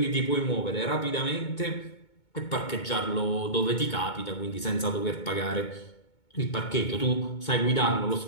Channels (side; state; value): right; late; 2.2 ms